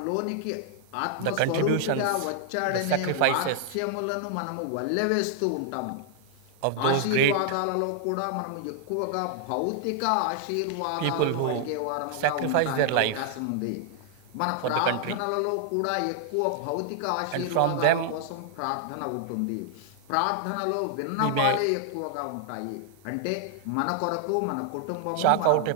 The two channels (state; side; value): different; both; correlation 0.00